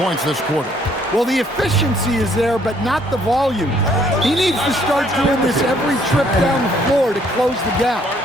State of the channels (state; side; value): normal; both; correlation 0.64